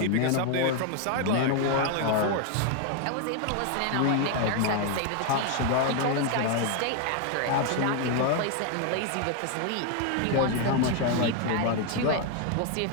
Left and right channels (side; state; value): both; different; correlation 0.01